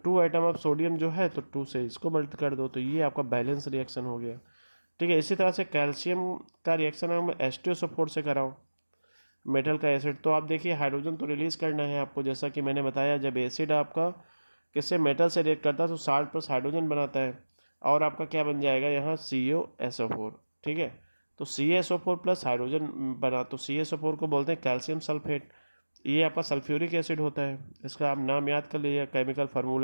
2 आइटम ऑफ सोडियम जो है तो 2 से इसको मल्ट कर दो, तो ये आपका बैलेंस रिएक्शन हो गया, ठीक है। इसी तरह से कैल्शियम का रिएक्शन हम H2SO4 से कराओ, मेटल का एसिड। तो आप देखिए हाइड्रोजन तो रिलीज करना है आपको, जैसा कि मैंने बताया, जब एसिड आपका किससे, मेटल से रिएक्ट करता है तो साल्ट प्लस हाइड्रोजन बनाता है, और आपका क्या बन जाएगा यहाँ COSO4, ठीक है। तो CaSO4 प्लस हाइड्रोजन बना, तो CaSO4 को बोलते हैं कैल्शियम सल्फेट। ये आपका सल्फ्यूरिक एसिड होता है, इसका आप नाम याद कर लीजिए, केमिकल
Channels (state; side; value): inverted; both; correlation -1.00